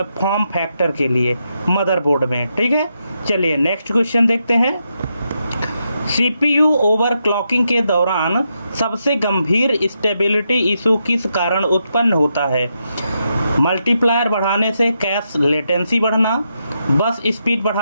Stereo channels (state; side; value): inverted; both; correlation -0.83